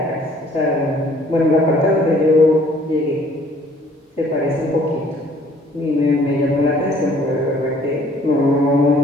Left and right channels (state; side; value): normal; both; correlation 0.58